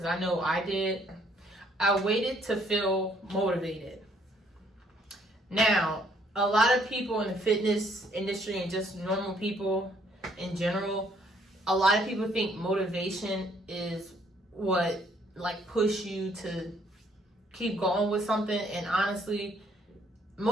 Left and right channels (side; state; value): both; normal; correlation 0.66